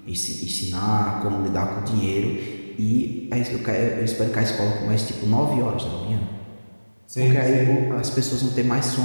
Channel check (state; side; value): inverted; both; correlation -1.00